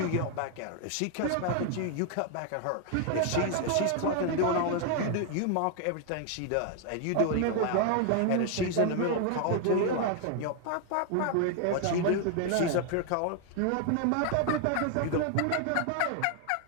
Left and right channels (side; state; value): both; different; correlation 0.00